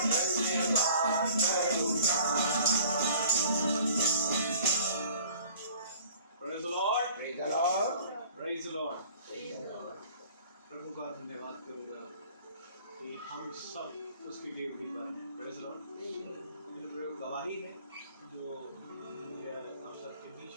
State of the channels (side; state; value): both; inverted; correlation -0.50